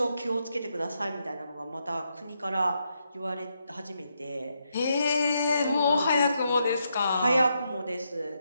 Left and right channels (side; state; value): both; inverted; correlation -0.81